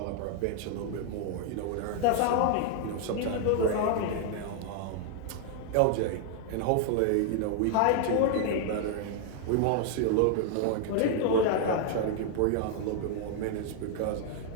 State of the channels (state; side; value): different; both; correlation 0.00